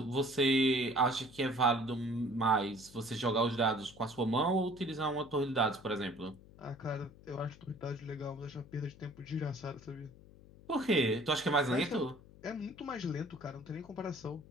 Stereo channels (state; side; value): noise; left; hum, 21 dB below the sound